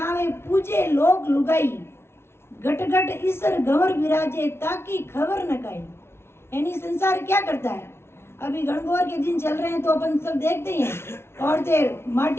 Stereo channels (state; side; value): late; right; 0.12 ms